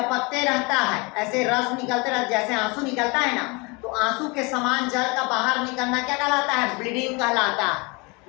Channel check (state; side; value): quieter; right; 28.2 dB